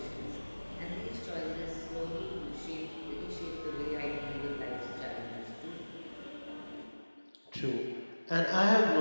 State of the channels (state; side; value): inverted; both; correlation -1.00